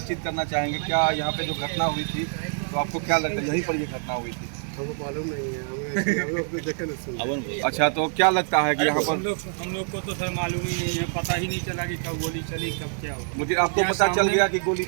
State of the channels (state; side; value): silent; left; digital silence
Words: करना चाहेंगे। क्या यहाँ पे जो घटना हुई थी तो आपको क्या लगता है, यहीं पर ये घटना हुई थी? हमको मालूम नहीं है, हम लोग तो देखे नहीं। अच्छा, तो क्या लगता है कि यहाँ पर हम लोग को तो सर मालूम ही नहीं है, पता ही नहीं चला कि कब गोली चली, कब क्या हुआ। मुझे आपको पता चल गया कि गोली